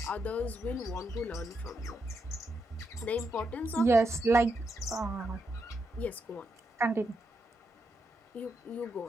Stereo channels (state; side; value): normal; both; correlation 0.82